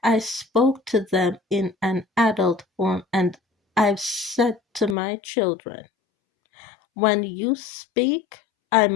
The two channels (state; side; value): drops out; right; at 5.0 s